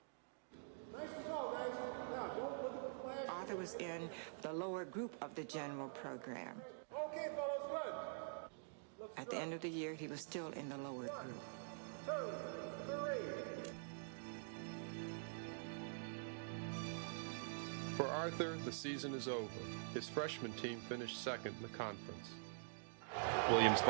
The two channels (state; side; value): silent; left; digital silence